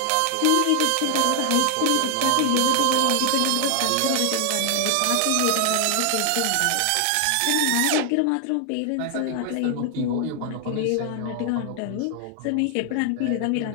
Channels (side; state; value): both; different; correlation 0.00